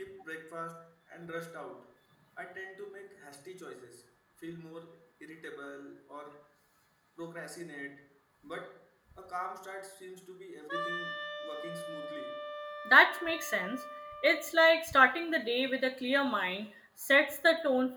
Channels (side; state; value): both; identical; correlation 1.00